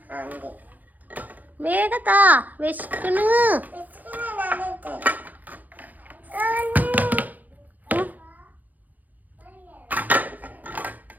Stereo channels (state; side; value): late; left; 0.082 ms